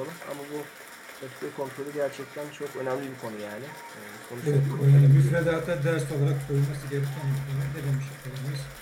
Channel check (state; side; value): identical; both; correlation 1.00